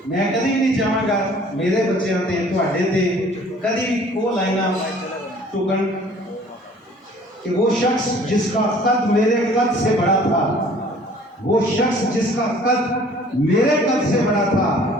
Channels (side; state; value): both; normal; correlation 0.53